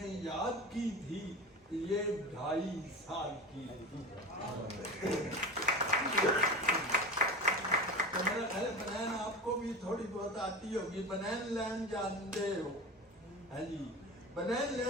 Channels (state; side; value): normal; both; correlation 0.29